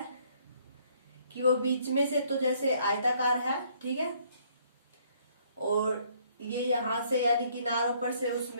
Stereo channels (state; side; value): inverted; both; correlation -0.64